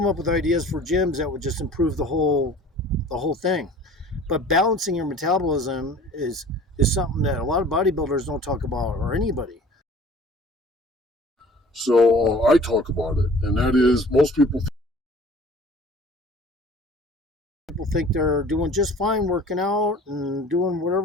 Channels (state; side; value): normal; both; correlation 0.47